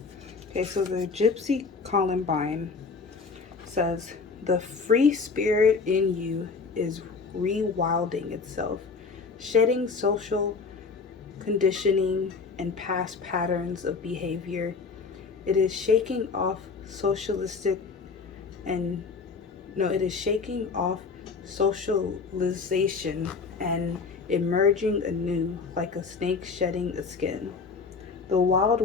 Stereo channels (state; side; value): quieter; right; 4.8 dB